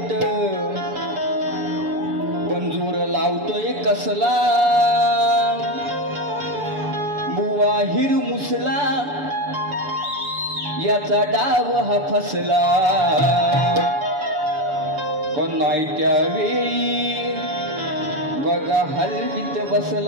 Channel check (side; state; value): left; late; 7.0 ms